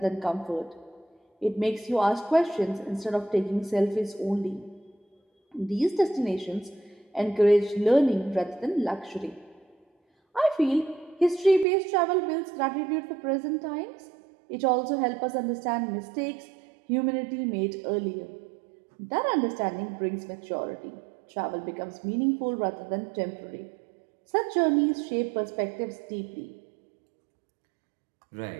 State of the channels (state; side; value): drops out; left; at 11.7 s